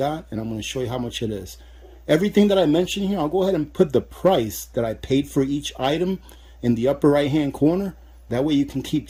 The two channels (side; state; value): both; identical; correlation 1.00